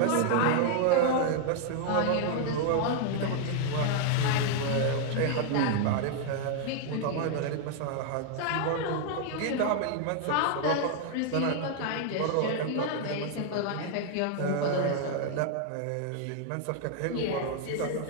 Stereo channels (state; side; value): different; both; correlation 0.00